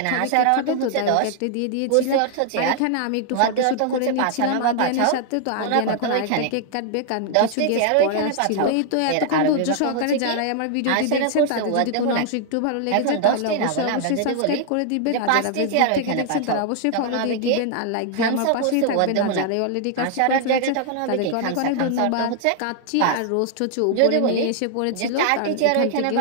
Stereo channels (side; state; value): both; different; correlation 0.00